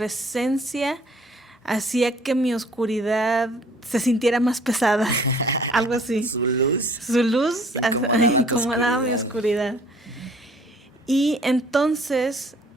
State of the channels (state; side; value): normal; both; correlation 0.56